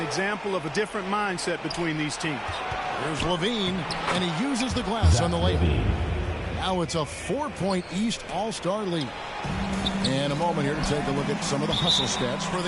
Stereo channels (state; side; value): identical; both; correlation 1.00